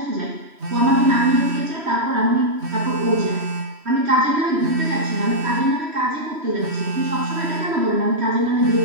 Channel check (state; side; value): late; left; 3.2 ms